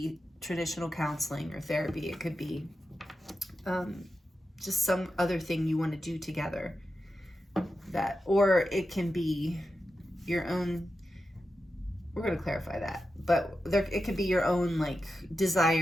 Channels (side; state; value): both; normal; correlation 0.90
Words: traditional counseling or therapy. It could be just some other thing you want to do together. That, or it can be your own, we're going to clarify that, but it could be your own like